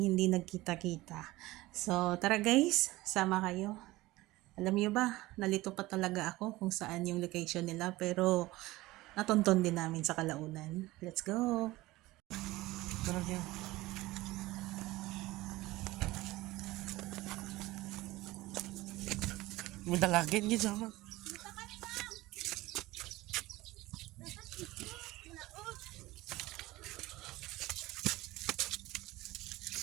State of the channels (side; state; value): left; quieter; 18.9 dB